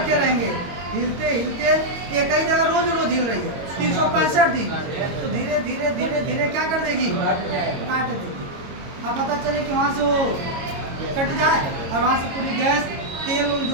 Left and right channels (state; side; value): late; left; 22 ms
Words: रहेंगे हिलते हिलते, एक ही जगह रोज हिल रही है 365 दिन, तो धीरे धीरे धीरे धीरे क्या कर देगी, काट देगी। अब पता चले कि वहाँ से वो कट जाए और वहाँ से पूरी गैस तेल